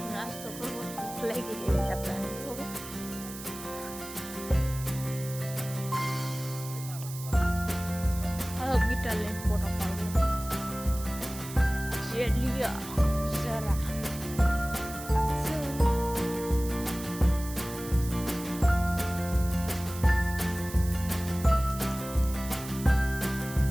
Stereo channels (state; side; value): noise; right; hiss, 12 dB below the sound